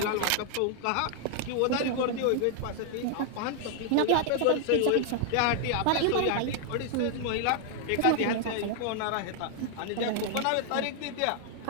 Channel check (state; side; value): different; both; correlation 0.00